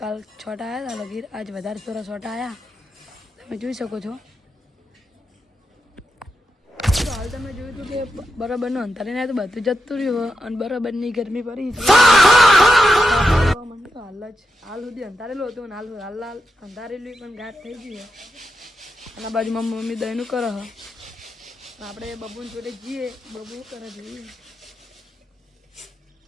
કાલ છોટા આવ્યા હતા લગીર, આજ વધારે થોડા છોટા આવ્યા, તમે જોઈ શકો છો। તો હાલ તમે જોયું હતું કે બરાબરનું અંધારીને આવ્યું તો બધું જતું રહ્યું અને બરાબરની ગરમી પડી છે। હાલ સુધી અંધારેલું હતું અને હાલ અંધારેલું પણ ગાઢ થઈ ગઈ છે। અને બાજુ મમ્મી દહીંનું કરે હ, આપણે બબુને જોડે જઈએ, બબુ કરે જોઈએ।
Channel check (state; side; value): normal; both; correlation 0.87